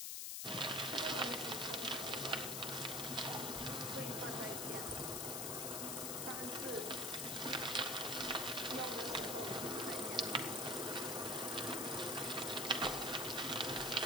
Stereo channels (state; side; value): noise; left; hiss, 1 dB below the sound